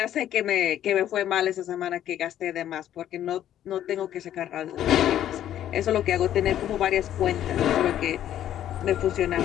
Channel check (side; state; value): right; quieter; 11.4 dB